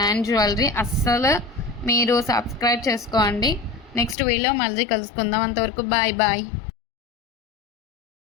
jewellery. అస్సలు మీరు సబ్స్క్రైబ్ చేసుకోండి. నెక్స్ట్ వీడియో మళ్ళీ కలుసుకుందాం. అంతవరకు బాయ్ బాయ్.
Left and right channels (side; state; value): right; drops out; at 4.2 s